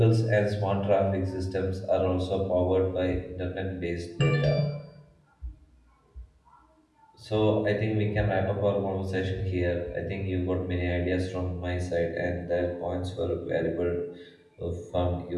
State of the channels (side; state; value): both; identical; correlation 1.00